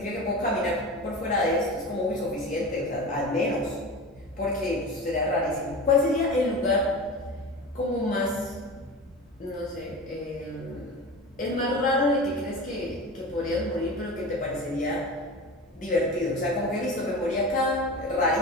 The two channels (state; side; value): normal; both; correlation 0.30